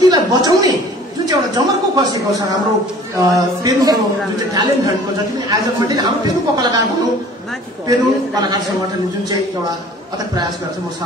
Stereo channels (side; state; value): both; normal; correlation 0.49